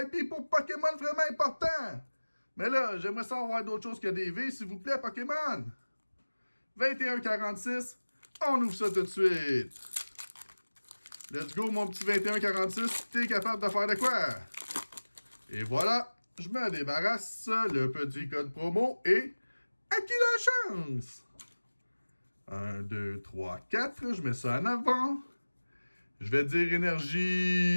pour Pokémon vraiment important. Mais là, j'aimerais savoir d'autres choses que des V, s'il vous plaît, Pokémon. 21,46. On ouvre ça tout de suite. Let's go, mon petit 21,46. T'es capable de faire de quoi? Et voilà, je me débarrasse le petit code promo et à qui la chance? 1, 2, 3, 4. Je mets ça en avant. Je vais dire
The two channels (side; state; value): both; inverted; correlation -1.00